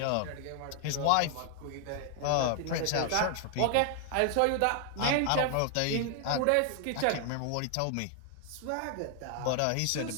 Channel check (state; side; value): different; both; correlation 0.00